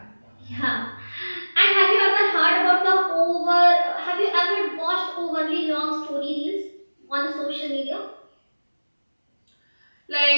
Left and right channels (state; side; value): inverted; both; correlation -1.00